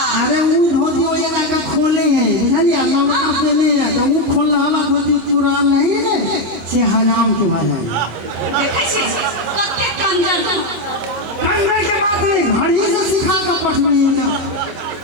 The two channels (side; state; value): left; late; 26 ms